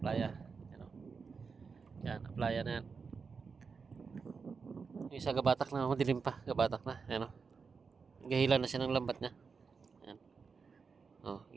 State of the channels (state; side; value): quieter; left; 5.2 dB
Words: Yan Yan, playa na yan. Yung isa gabatak na, madilim pa. Gabatak na. Yan Gahila na siya ng lambat niya. Yan.